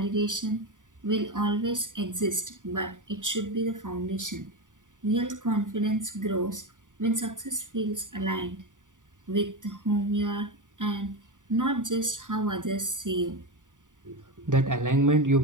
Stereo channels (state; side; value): late; left; 0.87 ms